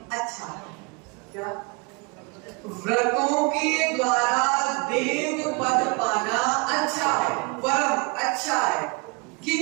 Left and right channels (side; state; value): left; quieter; 30.8 dB